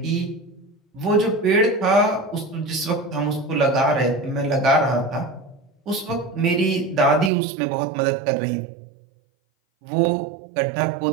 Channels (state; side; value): drops out; left; at 7.3 s